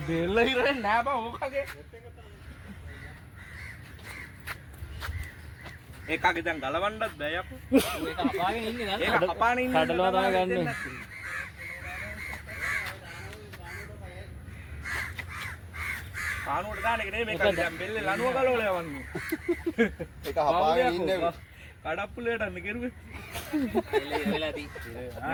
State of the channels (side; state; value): both; identical; correlation 1.00